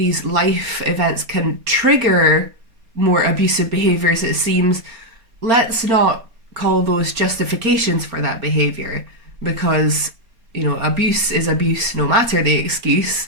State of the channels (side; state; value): left; late; 4.4 ms